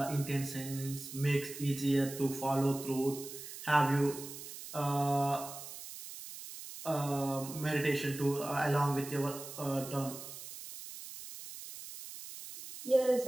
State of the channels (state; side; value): noise; right; hiss, 12 dB below the sound